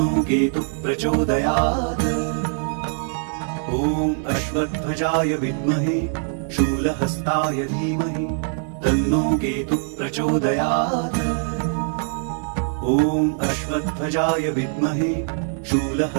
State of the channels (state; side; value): silent; left; 61 dB below the other